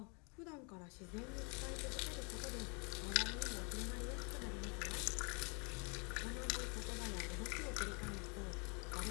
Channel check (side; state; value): right; quieter; 33.8 dB